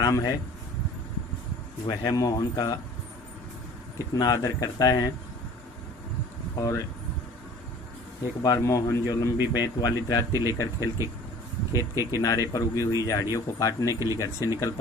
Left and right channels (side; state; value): both; normal; correlation 0.47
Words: है वह मोहन का कितना आदर करता है। और एक बार मोहन जो लंबी बेंत वाली दराती लेकर खेत के किनारे पर उगी हुई झाड़ियों को काटने के लिए घर से निकल